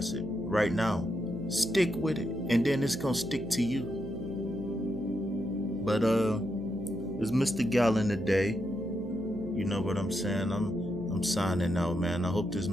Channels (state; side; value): noise; right; hum, 11 dB below the sound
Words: it right now, stick with it, and then it's gonna stick to you. But it's Mr. Gallon today. You know what I'm saying? I'm signing out, man. I hope this